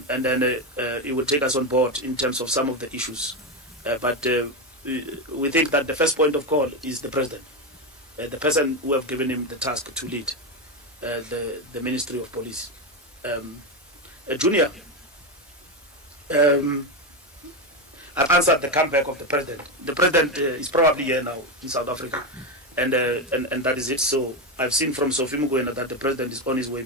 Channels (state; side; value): normal; both; correlation 0.12